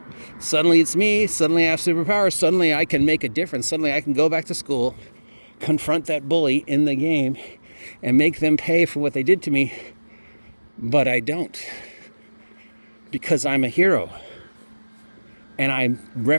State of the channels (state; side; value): inverted; both; correlation -1.00